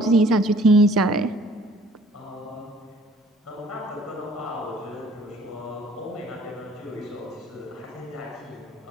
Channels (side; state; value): both; normal; correlation 0.55